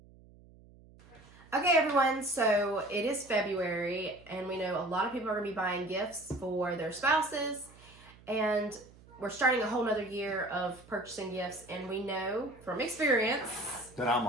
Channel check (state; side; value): noise; right; hum, 24 dB below the sound